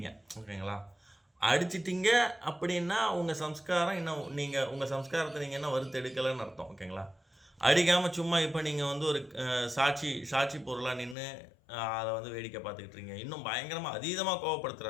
ஓகேங்களா? அடிச்சிட்டிங்க அப்படின்னா உங்கள் சம்ஸ்காரம் இன்னும் உங்கள் சம்ஸ்காரத்தை நீங்கள் என்ன வறுத்து எடுக்கலைன்னு அர்த்தம், ஓகேங்களா? அடிக்காமல் சும்மா இப்போ நீங்கள் ஒரு சாட்சி பொருளாக நின்று அதை வேடிக்கை பார்த்துக்கிட்டுருங்க. இன்னும் பயங்கரமாக அதீதமாக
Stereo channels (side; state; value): right; drops out; at 11.2 s